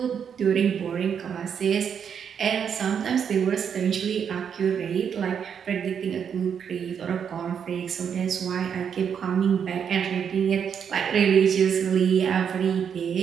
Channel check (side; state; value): left; quieter; 7.6 dB